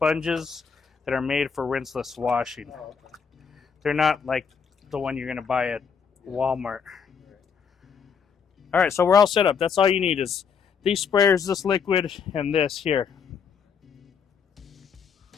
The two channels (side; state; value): right; quieter; 6.5 dB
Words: that are made for rinseless washing. They're not like the one you're gonna buy at Walmart. All right, so we're all set up. That's all you need is these sprayers, this liquid, and this here.